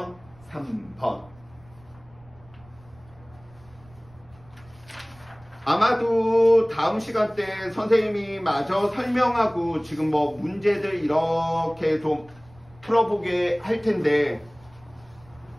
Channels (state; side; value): noise; right; rumble, 26 dB below the sound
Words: 3번. 아마도 다음 시간 때 선생님이 마저 설명하고 지금 뭐 문제들 이렇게 좀 풀어보게 할 텐데